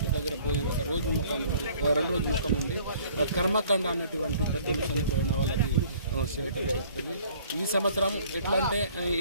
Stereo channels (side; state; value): both; inverted; correlation -0.55